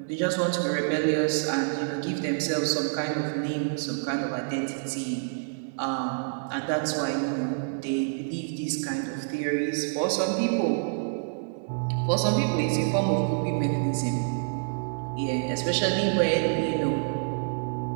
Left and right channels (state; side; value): silent; left; digital silence